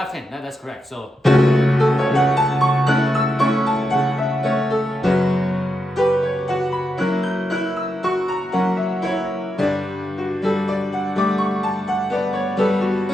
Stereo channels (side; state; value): both; normal; correlation 0.86